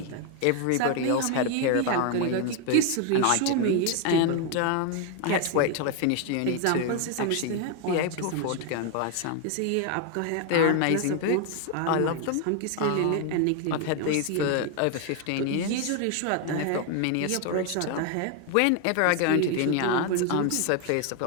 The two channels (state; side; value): different; both; correlation 0.01